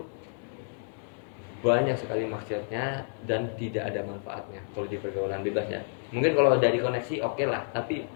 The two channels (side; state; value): right; silent; digital silence